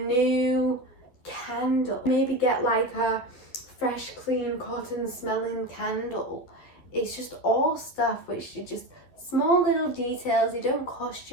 candle. Maybe get like a fresh, clean, cotton smelling candle. It's just all stuff which is just small little details. They don't cost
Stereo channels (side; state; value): right; late; 11 ms